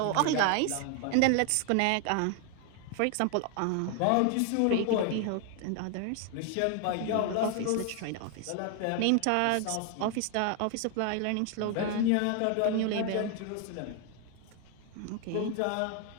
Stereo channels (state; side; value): different; both; correlation 0.00